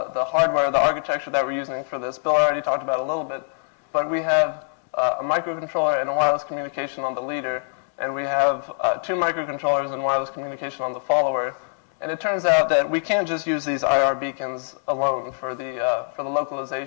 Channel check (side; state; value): right; silent; digital silence